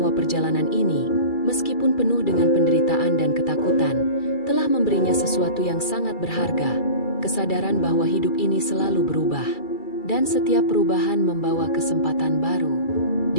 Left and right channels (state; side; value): late; right; 2.3 ms